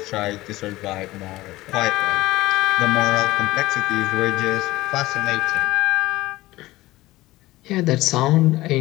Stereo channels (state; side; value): quieter; right; 18.1 dB